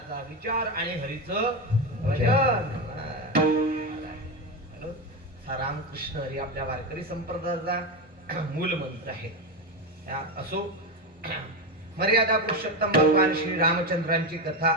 विचार आणि हरीचं भजन. रामकृष्ण हरी आपल्या वारकरी संप्रदायाचा मूल मंत्र आहे. असो, मर्यादा पुरुषोत्तम भगवान श्री रामचंद्रांची कथा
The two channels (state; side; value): normal; both; correlation 0.14